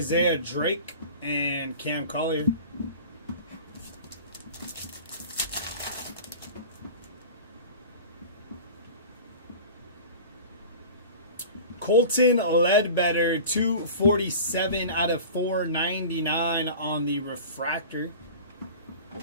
Drake and Cam Collier. Colton Ledbetter, 247 out of 499 on the refractor.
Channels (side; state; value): both; inverted; correlation -0.38